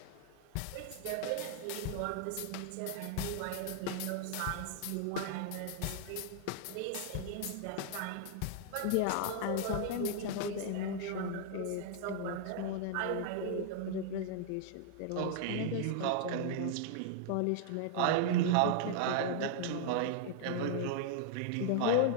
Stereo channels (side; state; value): both; different; correlation -0.01